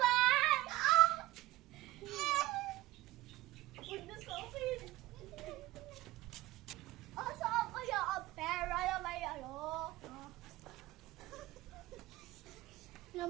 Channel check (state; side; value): quieter; left; 16.9 dB